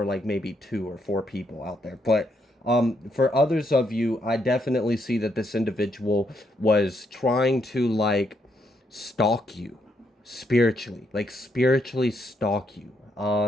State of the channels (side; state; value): both; normal; correlation 0.76